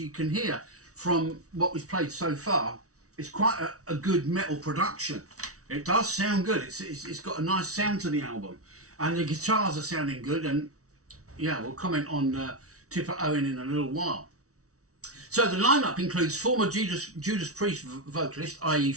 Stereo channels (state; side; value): late; left; 0.65 ms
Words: can hear from what we've played so far, it's quite a good metal production. It does sound good. It's got a nice sound to the album. And the guitars are sounding good. And yeah, we'll comment on Tipper Owen in a little while. So the lineup includes former Judas Priest vocalist, i.e.